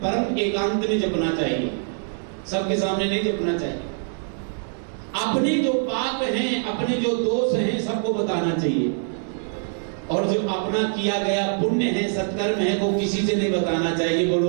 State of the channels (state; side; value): silent; left; 63 dB below the other